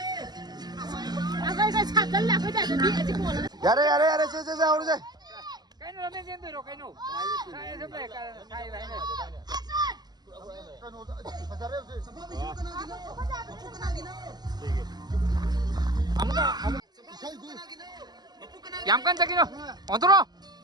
यारे से और से Cái nó lên trên từ rồi cái nổ. Sai sắp về sai vậy này. 아무가 얌깐짝이노 어디로?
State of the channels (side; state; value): left; late; 0.20 ms